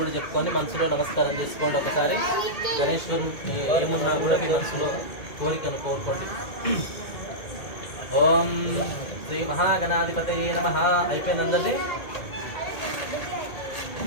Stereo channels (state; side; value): late; right; 2.2 ms